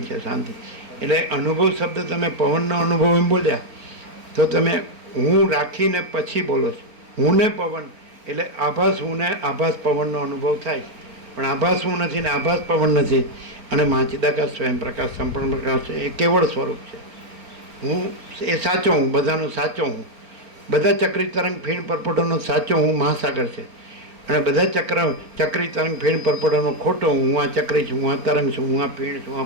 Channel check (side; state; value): left; late; 4.4 ms